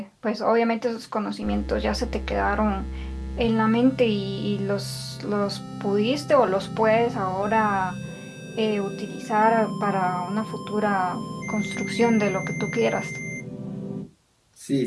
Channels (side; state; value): both; identical; correlation 1.00